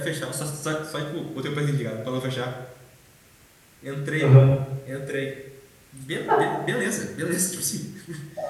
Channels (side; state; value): both; identical; correlation 1.00